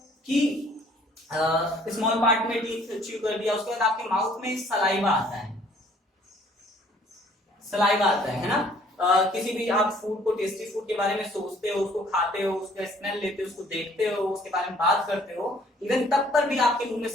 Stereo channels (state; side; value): normal; both; correlation 0.59